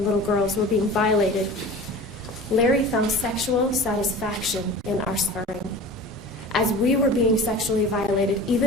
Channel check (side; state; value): both; normal; correlation 0.38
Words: little girls were being violated, Larry found sexual satisfaction in our suffering. As we were being sexually violated,